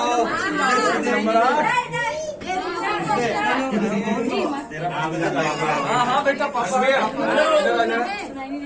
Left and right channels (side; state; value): both; identical; correlation 1.00